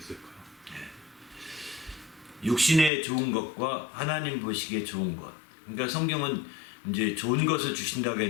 육신에 좋은 것과 하나님 보시기에 좋은 것. 그러니까 성경은 이제 좋은 것을 주신다고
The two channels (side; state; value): right; drops out; at 2.9 s